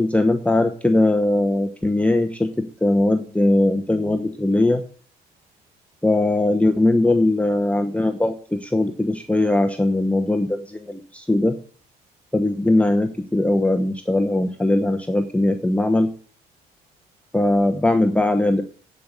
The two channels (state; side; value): normal; both; correlation 0.95